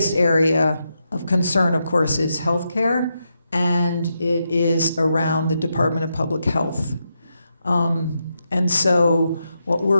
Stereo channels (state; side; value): inverted; both; correlation -0.84